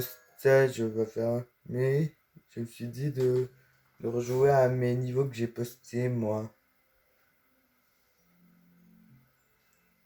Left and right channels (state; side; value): identical; both; correlation 1.00